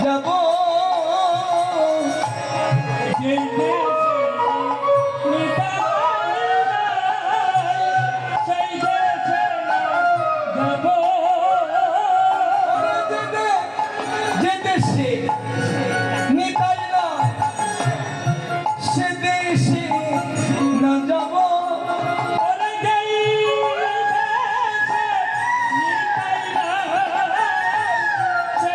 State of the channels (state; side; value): identical; both; correlation 1.00